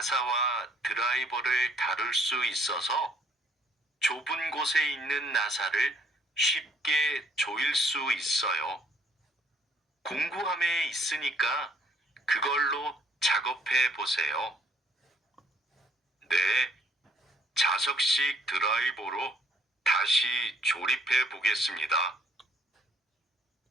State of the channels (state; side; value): normal; both; correlation 0.64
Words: 드라이버를 다룰 수 있어서 좁은 곳에 있는 나사를 쉽게 조일 수 있어요. 공구함에 있으니까 그걸로 작업해 보세요. 네, 자석식 드라이버로 다시 조립해 보겠습니다.